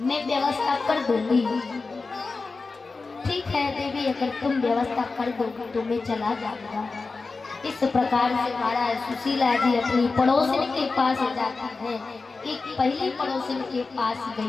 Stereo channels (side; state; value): right; quieter; 4.0 dB